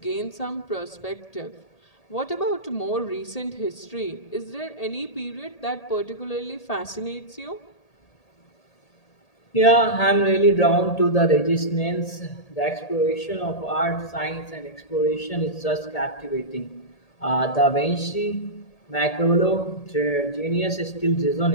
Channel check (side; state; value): right; late; 1.8 ms